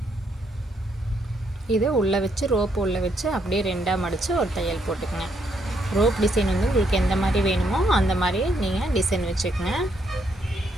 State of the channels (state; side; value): normal; both; correlation 0.74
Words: இதை உள்ளே வச்சு ரோப் உள்ளே வச்சு அப்படியே 2ஆக மடித்து ஒரு தையல் போட்டுக்கங்க. ரோப் டிசைன் வந்து உங்களுக்கு எந்த மாதிரி வேணுமோ அந்த மாதிரி நீங்கள் டிசைன் வச்சுக்கோங்க.